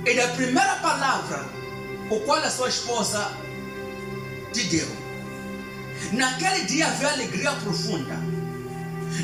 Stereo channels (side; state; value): both; identical; correlation 1.00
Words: e da primeira palavra o qual a sua esposa te deu. Naquele dia havia alegria profunda.